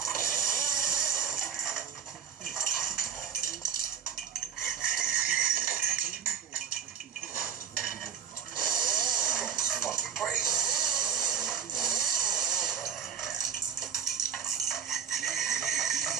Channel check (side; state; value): left; quieter; 7.7 dB